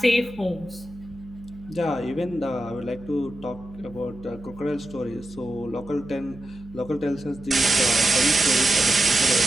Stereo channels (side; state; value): right; noise; hum, 19 dB below the sound